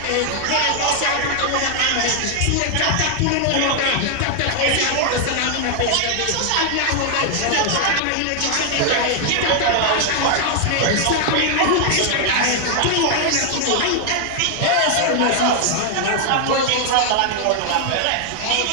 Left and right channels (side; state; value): both; different; correlation 0.00